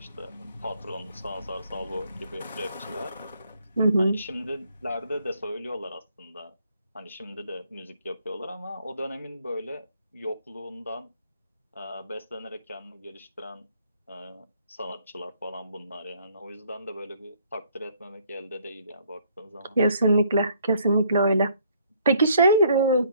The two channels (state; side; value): inverted; both; correlation -0.64